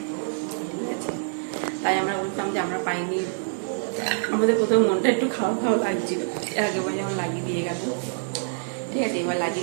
ঠিক আছে। তাই আমরা বলতাম যে আমরা পাইনি, আমাদের প্রথম মনটা একটু খাওয়া খাওয়া লাগছিল। আগেবার যেমন লাগিয়ে দিয়ে গেল, ঠিক আছে, এবার লাগিয়ে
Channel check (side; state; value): left; silent; digital silence